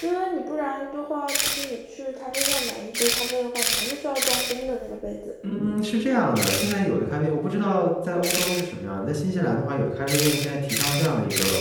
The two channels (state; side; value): identical; both; correlation 1.00